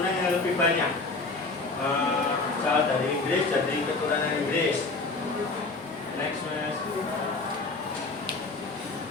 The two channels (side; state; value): right; quieter; 3.7 dB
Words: yang lebih banyak. Misal dari Inggris jadi keturunan Inggris. Next, mas.